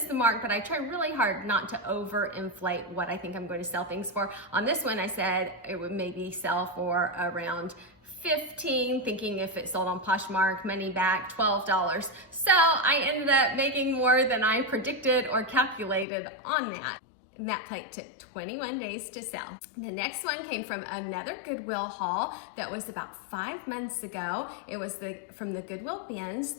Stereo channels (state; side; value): drops out; right; at 16.1 s